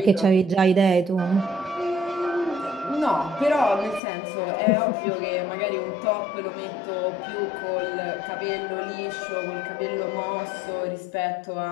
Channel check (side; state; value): right; drops out; at 4.0 s